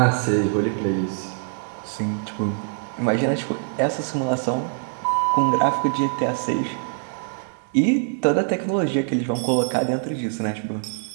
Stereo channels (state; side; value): silent; left; digital silence